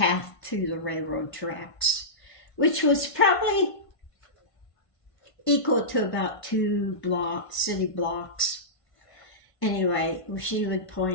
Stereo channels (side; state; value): right; late; 1.5 ms